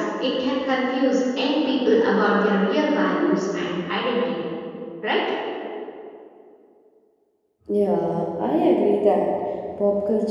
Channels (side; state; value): both; identical; correlation 1.00